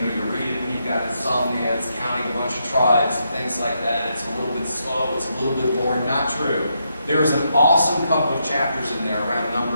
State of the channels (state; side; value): inverted; both; correlation -0.80